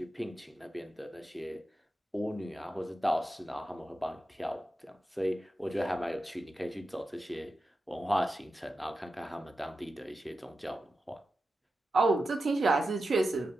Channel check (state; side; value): normal; both; correlation 0.91